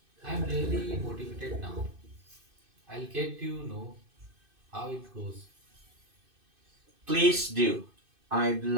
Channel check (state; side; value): late; left; 2.5 ms